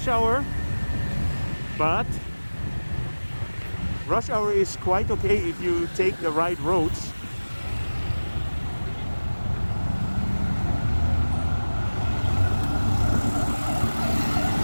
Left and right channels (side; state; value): both; inverted; correlation -1.00